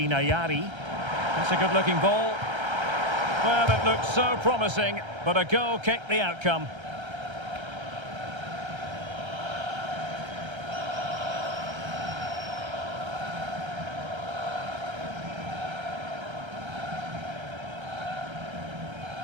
Ayari. That's a good-looking ball. Well, it looked so promising, but a goal kicked the outcome.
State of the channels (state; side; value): late; left; 1.3 ms